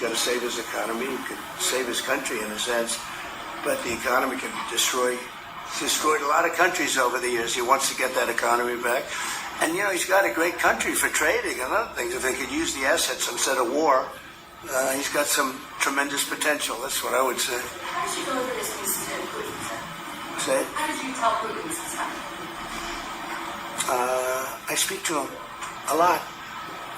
to save his economy. He could save his country in a sense, but the economy can be destroyed. He's destroyed a lot of countries over the years. He wants to get that economy back. And, he's got a great country for trading and other things. If they could use the assets instead of war, he's got some tremendous potential. That's what I would say. How did you go over this news to Putin? Say? How did you tell Putin this is happening? I speak to him a lot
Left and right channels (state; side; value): identical; both; correlation 1.00